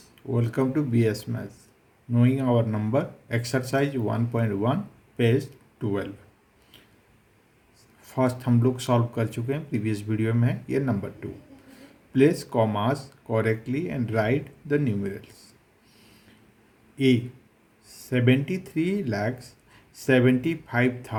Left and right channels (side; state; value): both; identical; correlation 1.00